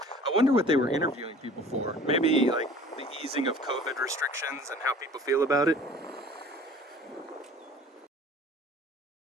I wonder what they were interviewing people for. Maybe like the easing of COVID restrictions and how people feel about it.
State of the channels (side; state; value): both; normal; correlation 0.46